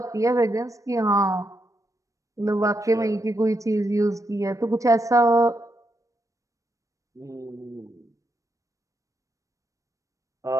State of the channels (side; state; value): left; late; 0.16 ms